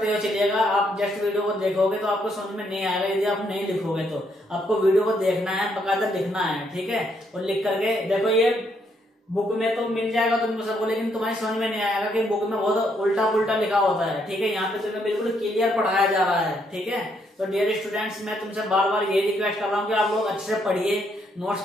हुए चलिएगा। आप जस्ट वीडियो को देखोगे तो आपको समझ में नहीं आएगा, यदि आप नहीं लिखोगे तो। आपको वीडियो को देखना है, बकायदा लिखना है, ठीक है। और लिख करके देखो, ये बुक में तो मिल जाएगा तुमको सबको, लेकिन तुम्हारी समझ में नहीं आएगा कि बुक में बहुत उल्टा पुल्टा लिखा होता है, ठीक है। यहाँ पे तुम्हें बिल्कुल क्लियर पढ़ाया जा रहा है, ठीक है। तो डियर स्टूडेंट्स, मैं तुमसे बार बार ये रिक्वेस्ट कर रहा हूँ कि आप लोग अच्छे से पढ़िए, नोट्स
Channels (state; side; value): normal; both; correlation 0.73